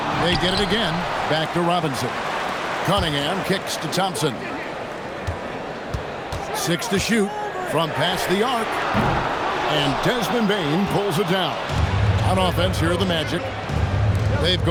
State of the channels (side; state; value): both; identical; correlation 1.00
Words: They get it again. Back to Robinson. Cunningham kicks to Thompson. 6 to shoot from past the arc. And Desmond Bain pulls it down. On offense, here are the Magic. They've